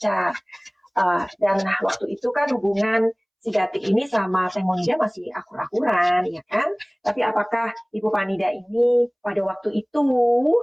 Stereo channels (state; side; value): identical; both; correlation 1.00